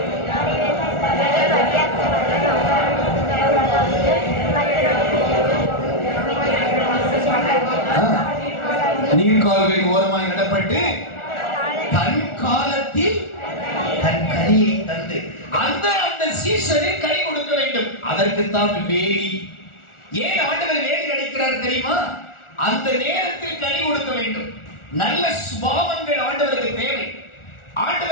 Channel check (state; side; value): late; right; 1.4 ms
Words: நீர்கால்களின் ஓரமாய் நடப்பட்டு தன் காலத்தில் தன் கனியை தந்து அந்த சீசனில் கனி கொடுக்க வேண்டும். அதற்குத்தான் வேலி. ஏன் ஆண்டவர் வேலி அடைக்கிறார் தெரியுமா? அந்த நேரத்தில் கனி கொடுக்க வேண்டும். நல்ல சுபாவங்கள் ஆண்டவருக்கு தேவை.